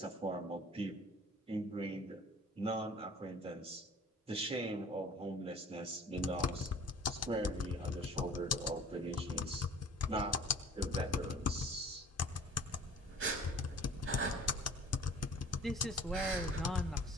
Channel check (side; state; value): both; normal; correlation 0.48